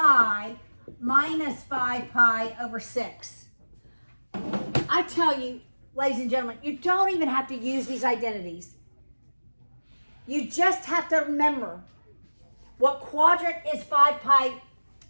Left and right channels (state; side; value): inverted; both; correlation -1.00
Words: minus 5 pi over 6. I tell you, ladies and gentlemen, you don't even have to use these identities. You just have to remember what quadrant is 5 pi